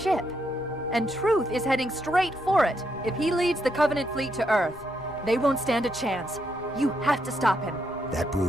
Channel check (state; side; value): noise; left; rumble, 24 dB below the sound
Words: And Truth is heading straight for it. If he leads the Covenant fleet to Earth, they won't stand a chance. You have to stop him. That